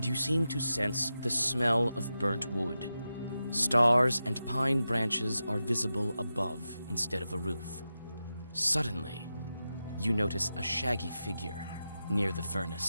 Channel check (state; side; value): inverted; both; correlation -0.91